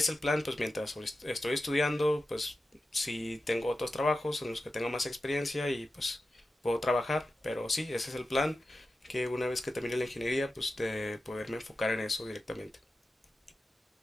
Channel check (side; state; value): both; normal; correlation 0.92